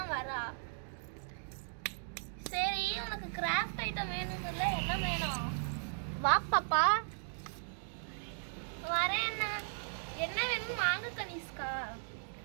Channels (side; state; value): left; silent; digital silence